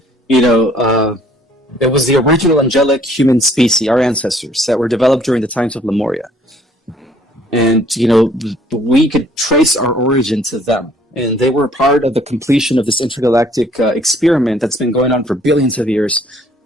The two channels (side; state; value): both; normal; correlation 0.60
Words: it was the original angelic human species, our ancestors, that were developed during the times of Lemuria. And, we could trace our origin to them. And they were part of the completion of this intergalactic experiment that's been going on for billions of years